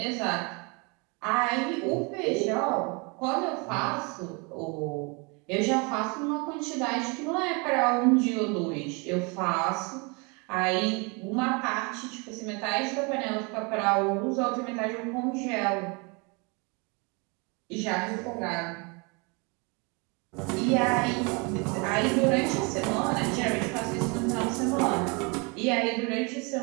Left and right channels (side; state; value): left; quieter; 30.8 dB